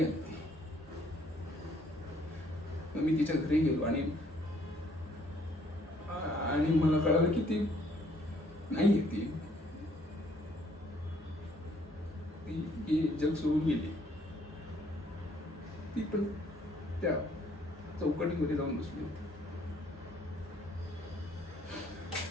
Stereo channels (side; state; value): both; normal; correlation 0.64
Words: आली ती. मग मी तिच्या घरी गेलो आणि मला कळालं की ती नाही ती जग सोडून गेली. ती पण त्या चौकटीमध्ये जाऊन बसली होती.